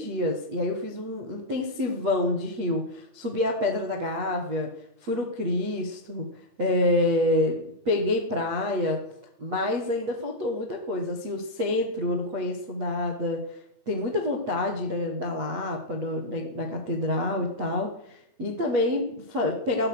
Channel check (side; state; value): left; late; 8.3 ms